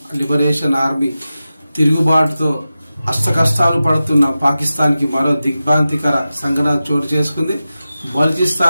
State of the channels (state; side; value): inverted; both; correlation -0.94